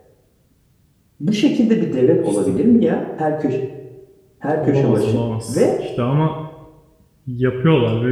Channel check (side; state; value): both; identical; correlation 1.00